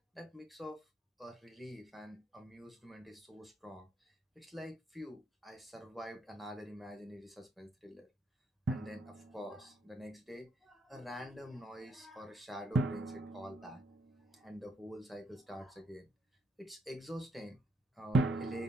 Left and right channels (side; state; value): both; normal; correlation 0.75